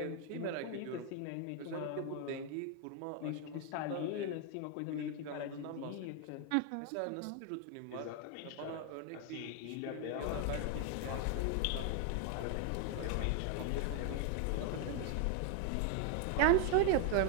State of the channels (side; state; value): both; different; correlation 0.01